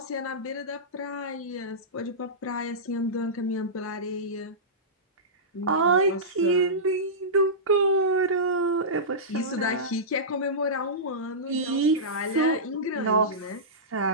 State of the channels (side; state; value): both; normal; correlation -0.16